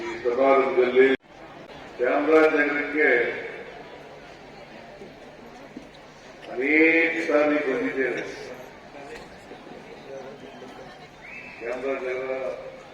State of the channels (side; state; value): both; identical; correlation 1.00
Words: ಸಮಾರಂಭದಲ್ಲಿ ಚಾಮರಾಜನಗರಕ್ಕೆ ಅನೇಕ ಸಾರಿ ಬಂದಿದ್ದೇನೆ. ಚಾಮರಾಜನಗರ